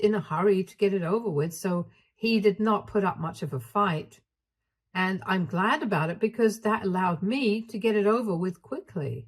a hurry to get it over with, so he did not put up much of a fight. And I'm glad about it because that allowed me to get it over with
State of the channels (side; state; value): both; identical; correlation 1.00